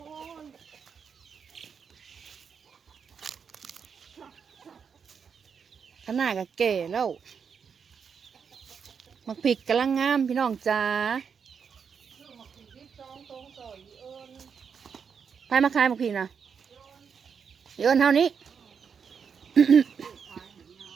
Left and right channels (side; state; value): left; quieter; 6.5 dB